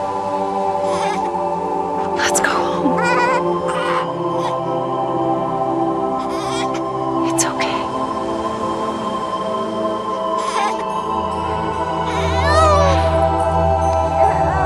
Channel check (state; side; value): identical; both; correlation 1.00